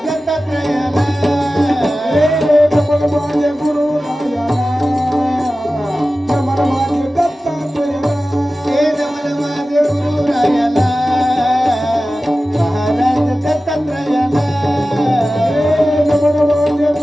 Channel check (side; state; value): both; normal; correlation 0.95